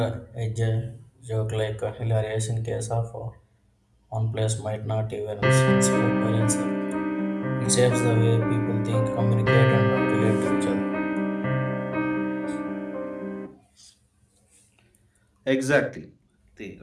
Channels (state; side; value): identical; both; correlation 1.00